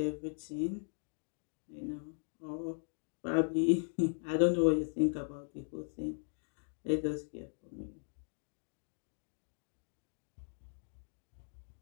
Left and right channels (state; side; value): silent; right; digital silence